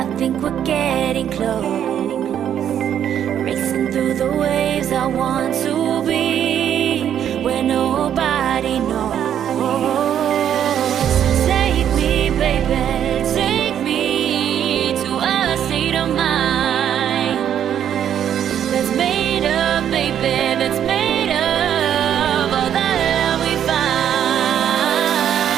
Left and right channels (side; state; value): left; quieter; 9.7 dB